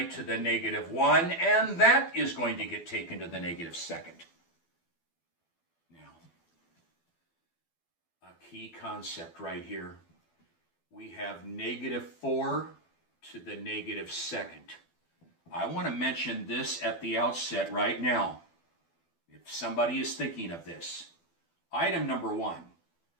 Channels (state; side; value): late; right; 12 ms